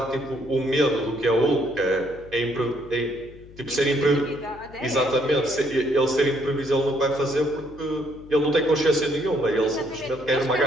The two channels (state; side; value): noise; left; hum, 20 dB below the sound